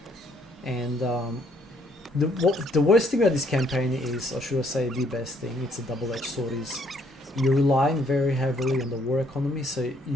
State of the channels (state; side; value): normal; both; correlation 0.67